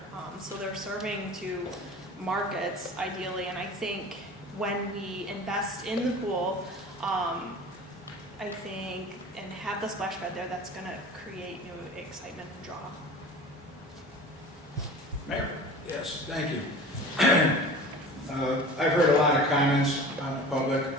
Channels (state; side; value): normal; both; correlation 0.39